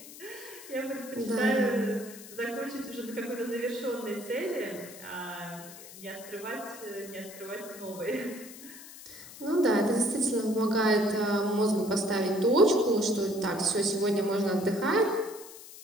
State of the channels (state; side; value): noise; left; hiss, 16 dB below the sound